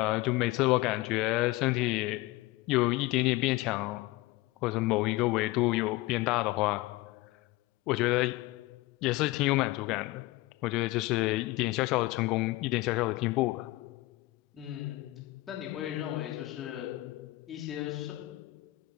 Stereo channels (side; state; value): right; quieter; 19.7 dB